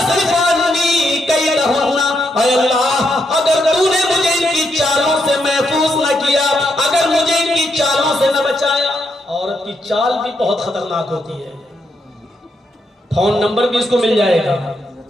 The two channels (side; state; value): both; normal; correlation 0.79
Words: عنی کیدہن, اے اللہ اگر تو نے مجھے ان کی چالوں سے محفوظ نہ کیا, اگر مجھے ان کی چالوں سے نہ بچایا. عورت کی چال بھی بہت خطرناک ہوتی ہے, فون نمبر بھی اس کو مل جائے گا,